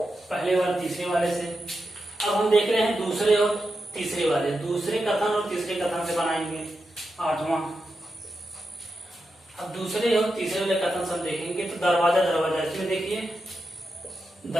और तीसरे वाले से। अब हम देख रहे हैं दूसरे और तीसरे वाले, दूसरे कथन और तीसरे कथन से बनाएंगे 8वां। अब दूसरे और तीसरे वाले कथन से हम देखेंगे तो दरवाजा दरवाजा, इसमें देखिए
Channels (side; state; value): both; normal; correlation 0.88